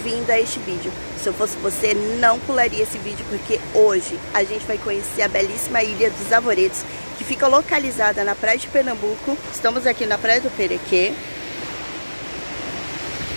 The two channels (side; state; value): both; inverted; correlation -1.00